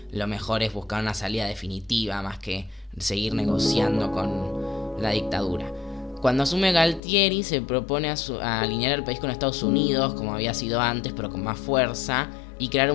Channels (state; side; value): drops out; right; at 7.0 s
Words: lo mejor es buscar una salida definitiva más que seguir negociando con la dictadura. Cuando asume Galtieri, se propone a alinear el país con Estados Unidos, como había sido antes, pero con más fuerza, y crear